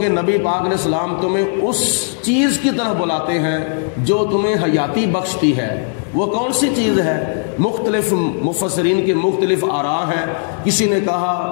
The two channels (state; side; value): silent; right; 58 dB below the other